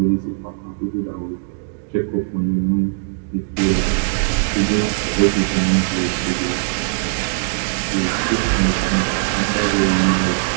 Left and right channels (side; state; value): left; silent; digital silence